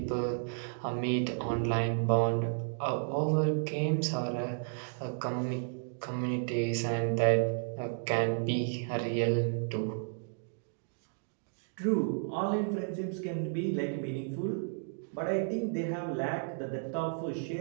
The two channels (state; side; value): silent; left; digital silence